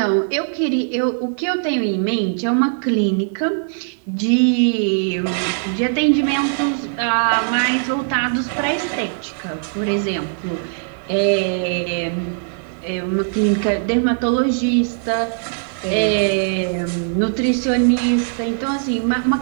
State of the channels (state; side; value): silent; left; 66 dB below the other